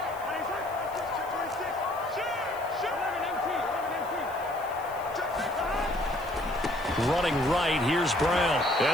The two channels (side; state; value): left; noise; hiss, 22 dB below the sound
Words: running right. Here's Brown.